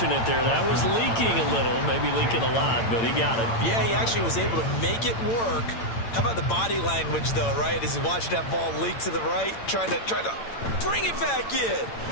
there. That was leaking a little, maybe leaking a lot, but he got it. Yeah, he actually was able to make it work. How about the body language, though, right? As he watched that ball leak to the right, trying to bring it back in,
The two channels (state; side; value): late; right; 8.8 ms